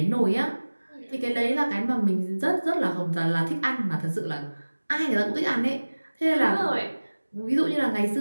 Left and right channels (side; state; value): both; inverted; correlation -1.00